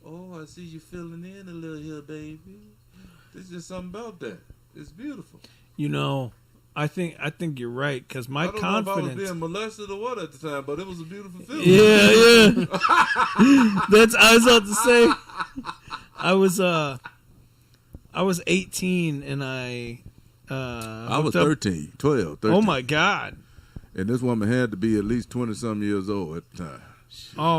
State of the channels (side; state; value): both; identical; correlation 1.00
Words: Oh, I see you filling in a little here, baby. There's just something about that. It's beautiful. You know, I think you're right because my I don't know if I was confidence. being molested or what at the time, but it was a beautiful feeling. Yeah. That's I was about to say. I was 18 and I was hooked up- 13, 12, 13. Oh my god. And this woman had to be at least 20-some years old at the time.